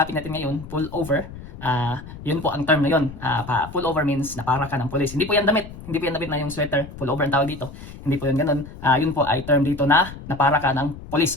natin ngayon, pull over. Yun po ang term na yun. Pull over means napara ka ng pulis. Hindi po yan damit. Hindi po yan damit na yung sweater. Pull over ang tawag dito. Hindi po yan ganun. Yun po ay term dito na napara ka ng pulis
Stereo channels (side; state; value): left; noise; rumble, 14 dB below the sound